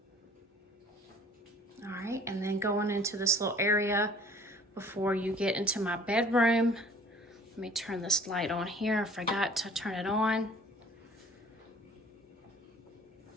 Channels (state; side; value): normal; both; correlation 0.51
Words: All right, and then going into this little area before you get into my bedroom. Let me turn this light on here. I forgot to turn it on.